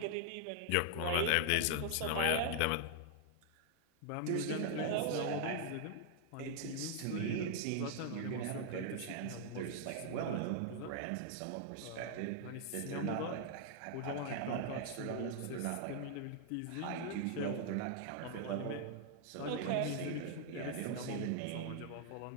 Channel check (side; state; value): both; different; correlation 0.00